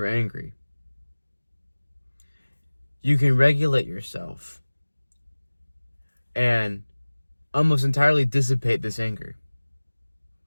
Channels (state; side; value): inverted; both; correlation -1.00